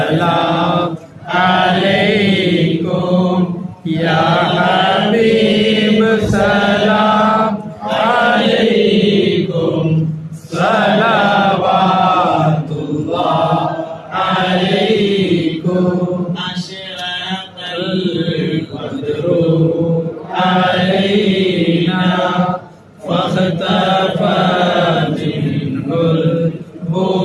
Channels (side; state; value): both; identical; correlation 1.00